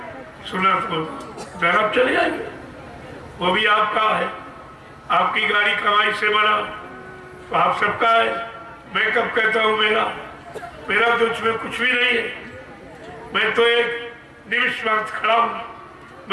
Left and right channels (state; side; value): identical; both; correlation 1.00